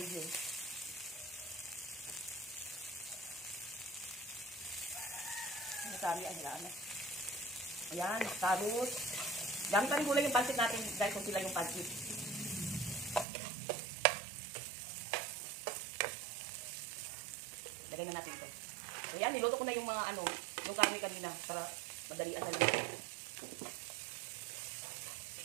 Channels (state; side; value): drops out; left; at 13.2 s